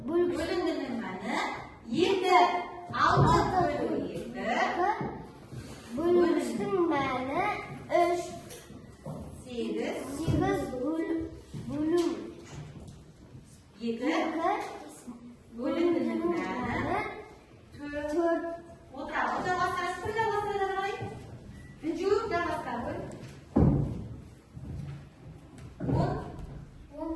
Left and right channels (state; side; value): identical; both; correlation 1.00